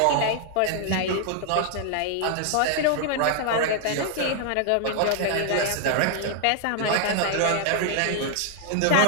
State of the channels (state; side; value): different; both; correlation 0.00